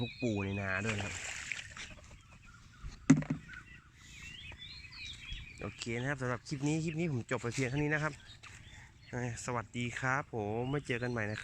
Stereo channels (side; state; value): both; identical; correlation 1.00